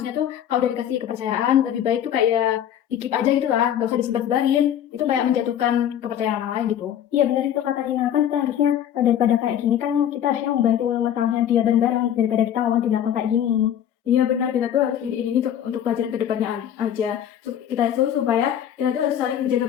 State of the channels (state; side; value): quieter; right; 10.1 dB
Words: tuh kalau udah dikasih kepercayaan lebih baik tuh kayak di-keep aja gitu lah, nggak usah disebar-sebarin. Itu kayak menjatuhkan kepercayaan orang lain gitu. Iya benar itu kata Rina, kan kita harusnya daripada kayak gini kan kita harusnya membantu masalahnya dia bareng-bareng daripada kita ngomong di belakang kayak gini. Iya benar, kita tuh harus ini untuk pelajaran kedepannya aja. Kita itu supaya kita tuh harus saling